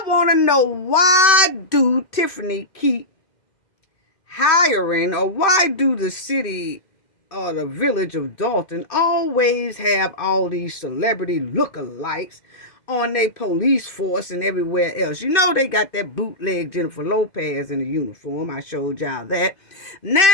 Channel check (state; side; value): late; right; 2.6 ms